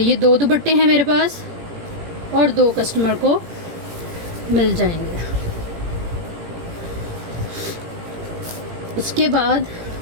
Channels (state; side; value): late; left; 18 ms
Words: 2 दुपट्टे हैं मेरे पास और 2 कस्टमर को मिल जाएंगे। उसके बाद